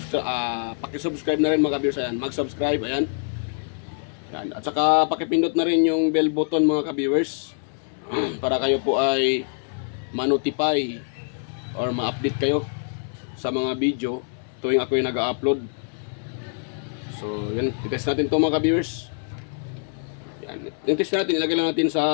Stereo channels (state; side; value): silent; right; 62 dB below the other